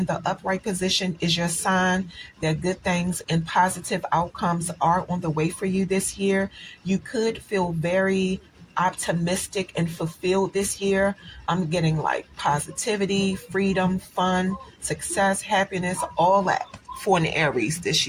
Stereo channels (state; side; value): identical; both; correlation 1.00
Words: the upright position is your sign that good things and positive outcomes are on the way for you this year. You could feel very optimistic and fulfilled this year. I'm getting like positivity, freedom, fun, success, happiness, all that for an Aries this